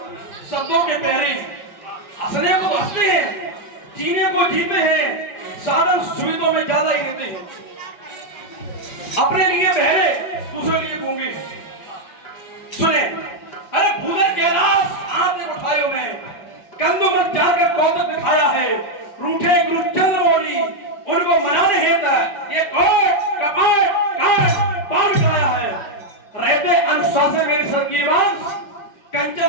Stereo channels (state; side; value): late; right; 5.3 ms